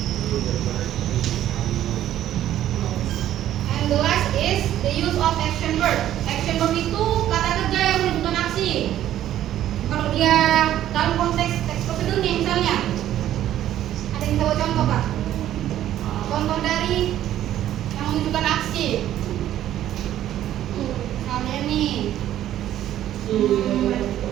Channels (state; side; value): quieter; left; 12.2 dB